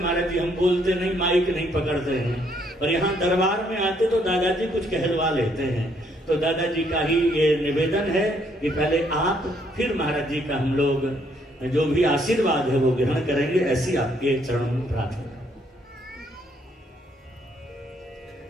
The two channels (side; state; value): both; normal; correlation 0.69